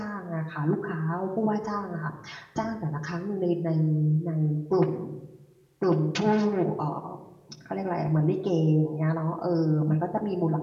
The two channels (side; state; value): both; identical; correlation 1.00